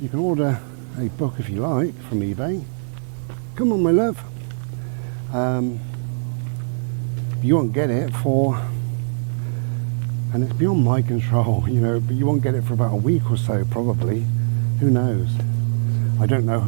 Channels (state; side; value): silent; left; digital silence